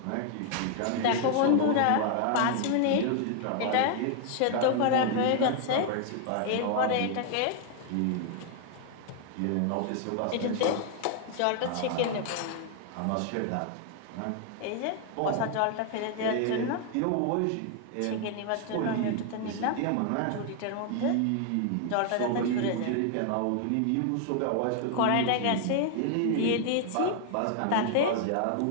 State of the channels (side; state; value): both; different; correlation 0.00